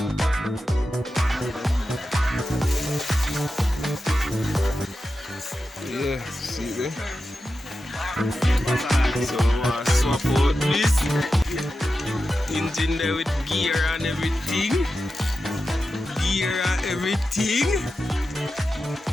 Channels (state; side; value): normal; both; correlation 0.91